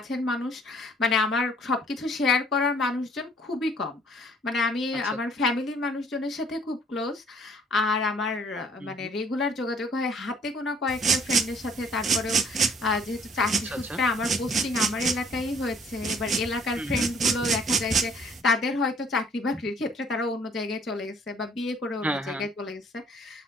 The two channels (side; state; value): both; normal; correlation 0.58